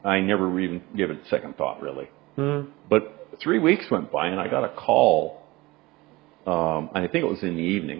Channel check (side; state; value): left; quieter; 21.1 dB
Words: I never even gave it a second thought, really. But 3 weeks went by, and I got a call. I think it was in the